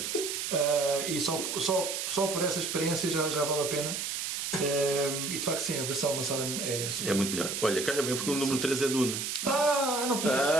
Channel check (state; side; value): noise; right; hiss, 3 dB below the sound